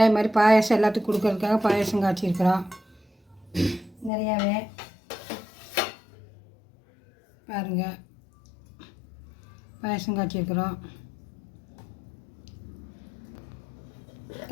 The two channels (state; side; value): drops out; right; at 4.1 s